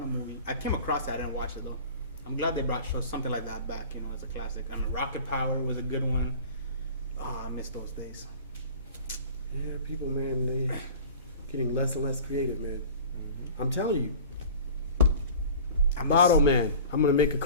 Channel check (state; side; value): inverted; both; correlation -0.41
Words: movie. I came across that, I didn't watch it though. I'm glad they brought something like that back, you know, as a classic. I mean, Rocket Power was a good one. Oh, I miss those days. yeah, people, man, they getting less and less creative, man. I'm telling you, I'm Bottle Man. I'm gonna make a